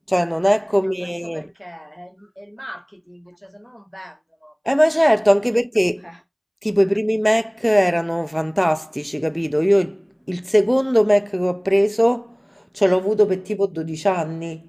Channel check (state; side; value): identical; both; correlation 1.00